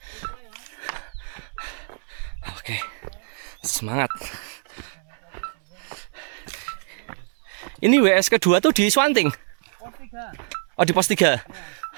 Oke. Semangat. Ini WS kedua tuh di Swanting. Pos 3. Oh, di pos 3.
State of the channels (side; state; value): left; silent; digital silence